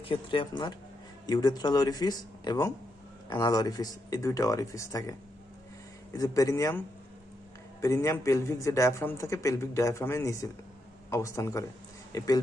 ক্ষেত্রে আপনার ইউরেথ্রাল ওয়ারিফিস এবং অ্যানাল ওয়ারিফিস, এই দুইটা ওয়ারিফিস থাকে। এই যে পেরিনিয়াম পেলভিক যে ডায়াফ্রাম থাকে, পেলভিক ডায়াফ্রামের নিচে অবস্থান করে। এই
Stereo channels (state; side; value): normal; both; correlation 0.82